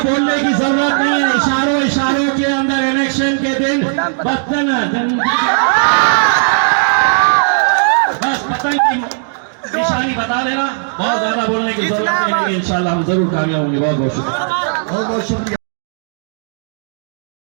की जरूरत नहीं है, इशारों के अंदर इलेक्शन के दिन बस पतंग की निशानी बता देना, बहुत ज्यादा बोलने की जरूरत नहीं है। इंशाल्लाह हम जरूर कामयाब होंगे। बहुत बहुत शुक्रिया, बहुत बहुत शुक्रिया।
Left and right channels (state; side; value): silent; left; digital silence